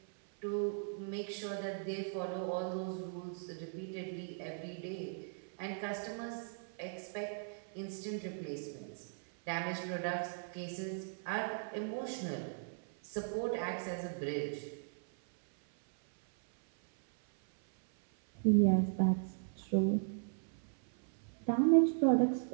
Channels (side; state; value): left; silent; 53 dB below the other